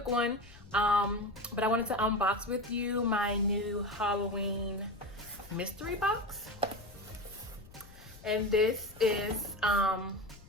one, but I wanted to unbox with you my new Halloween mystery box. And this is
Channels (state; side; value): noise; left; rumble, 21 dB below the sound